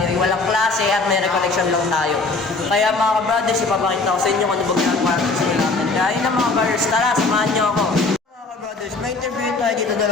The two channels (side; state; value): right; quieter; 3.6 dB